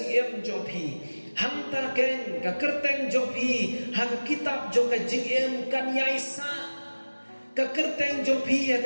jompi hangta ken ka kerteng jompi ha ka kitab jong ka jingem kan yaisa ka kerteng jompi ha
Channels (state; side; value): inverted; both; correlation -1.00